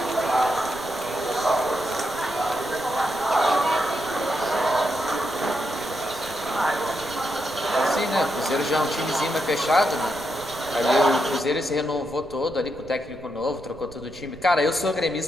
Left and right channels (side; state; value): right; noise; rumble, 19 dB below the sound